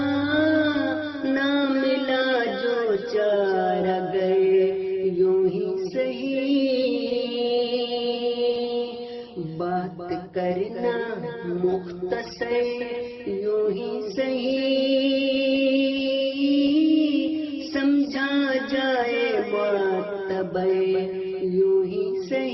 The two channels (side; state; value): both; identical; correlation 1.00